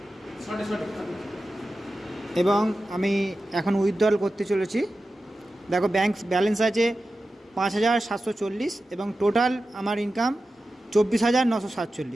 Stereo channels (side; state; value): both; normal; correlation 0.93